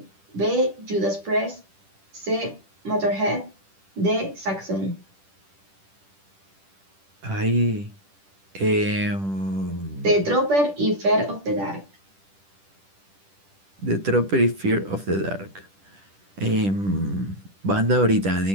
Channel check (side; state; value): left; late; 10 ms